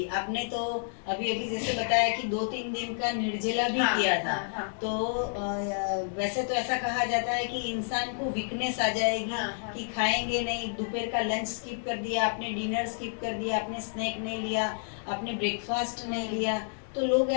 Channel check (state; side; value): silent; right; digital silence